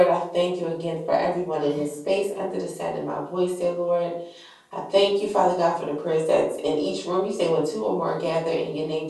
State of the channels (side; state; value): both; identical; correlation 1.00